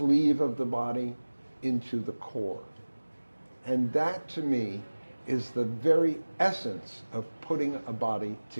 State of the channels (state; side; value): inverted; both; correlation -1.00